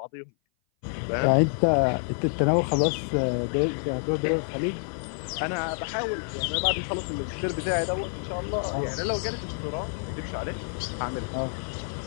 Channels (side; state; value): right; silent; 57 dB below the other